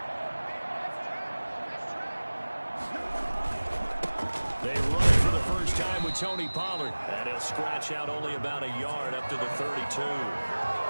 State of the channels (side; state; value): both; inverted; correlation -1.00